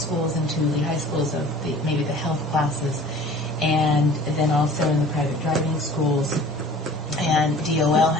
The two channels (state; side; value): normal; both; correlation 0.46